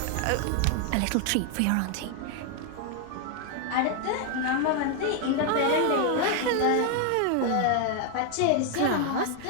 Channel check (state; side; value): different; both; correlation 0.01